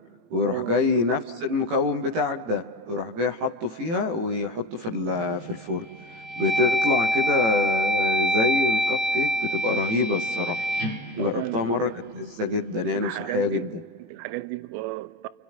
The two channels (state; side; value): late; left; 18 ms